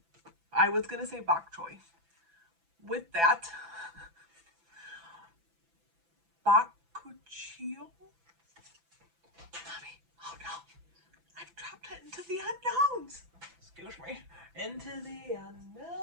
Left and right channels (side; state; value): left; late; 6.0 ms